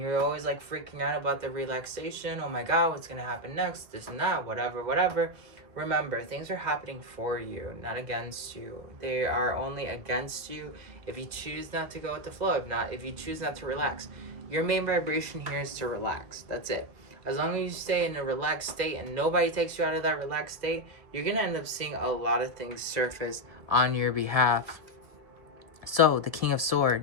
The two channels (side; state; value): left; late; 1.7 ms